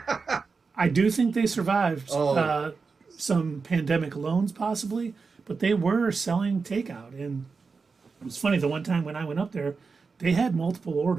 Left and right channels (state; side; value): quieter; left; 4.7 dB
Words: I do think they survived some pandemic loans, possibly, but they were selling takeout. And it was funny, the one time when I went up there, they had multiple